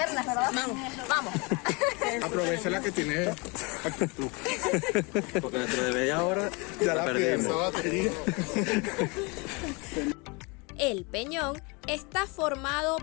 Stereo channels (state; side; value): quieter; right; 29.1 dB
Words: ¿verdad? Vamos. Aprovecha la que tiene actitud. Porque dentro de media hora ya la perdimos. El peñón está formado